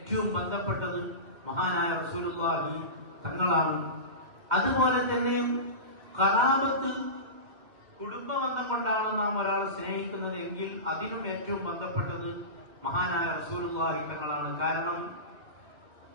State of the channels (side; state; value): left; late; 2.5 ms